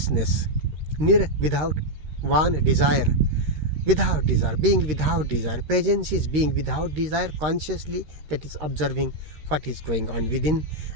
Nir, without, van, desire. Without desire, being without desire. Presence is being without desire consciously, that is observing what is going on within,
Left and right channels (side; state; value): left; late; 13 ms